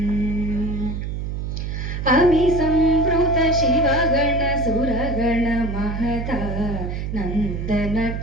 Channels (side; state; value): right; noise; hum, 4 dB below the sound